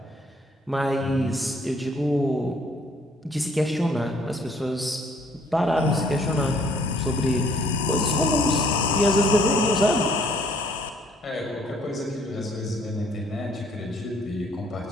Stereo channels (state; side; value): normal; both; correlation 0.62